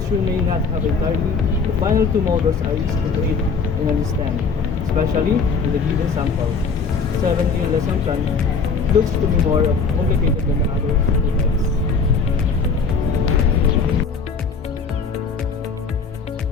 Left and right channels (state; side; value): quieter; right; 5.0 dB